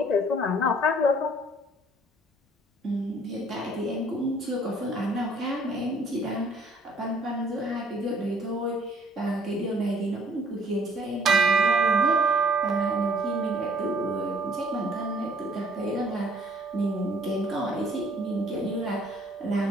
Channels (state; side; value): normal; both; correlation 0.58